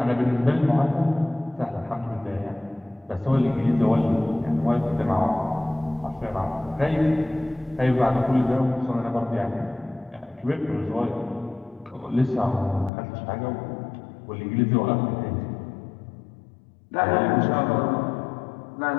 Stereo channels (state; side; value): drops out; right; at 12.9 s